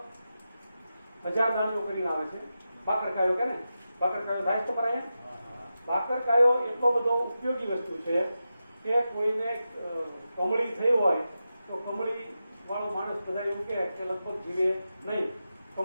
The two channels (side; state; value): both; inverted; correlation -0.91